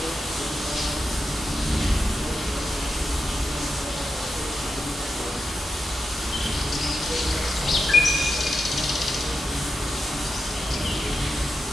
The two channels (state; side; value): normal; both; correlation 0.88